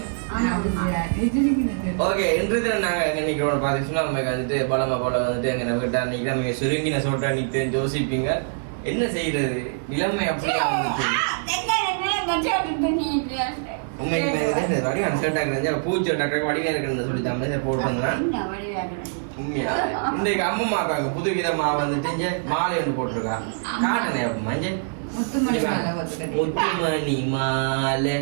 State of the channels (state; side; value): silent; left; 63 dB below the other